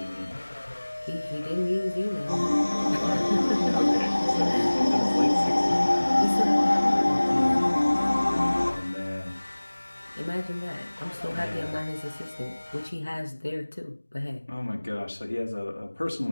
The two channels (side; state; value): both; inverted; correlation -1.00